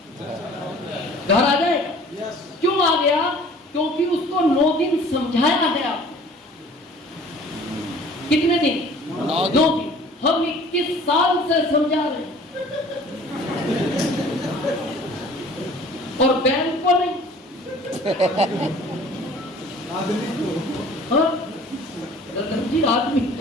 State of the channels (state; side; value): normal; both; correlation 0.49